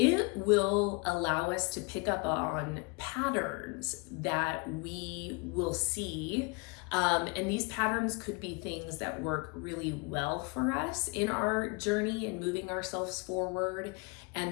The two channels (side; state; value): right; quieter; 30.5 dB